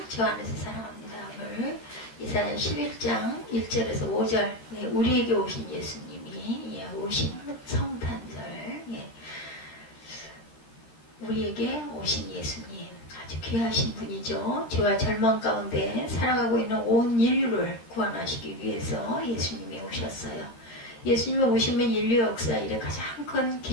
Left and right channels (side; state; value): right; late; 13 ms